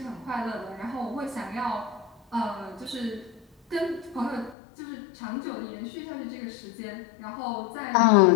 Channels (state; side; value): drops out; right; at 4.5 s